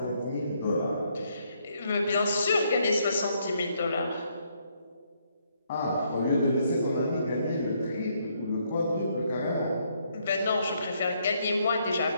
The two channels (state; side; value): inverted; both; correlation -0.72